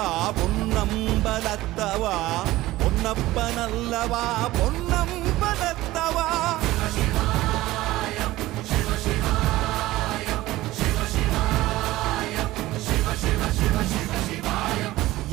பொன்னம்பலத்தவா, பொன்னப்பனல்லவா பொன்னம்பலத்தவா.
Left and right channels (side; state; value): left; quieter; 17.2 dB